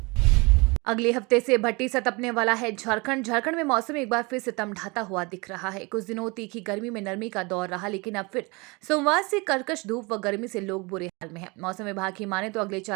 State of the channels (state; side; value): quieter; left; 27.0 dB